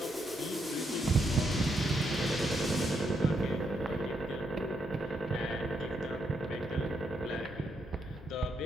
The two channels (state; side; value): normal; both; correlation 0.79